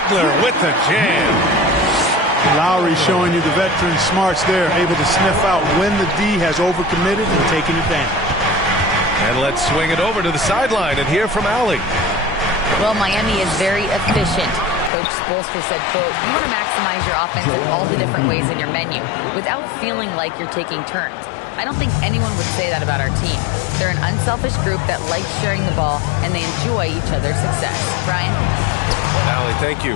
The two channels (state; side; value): drops out; right; at 14.9 s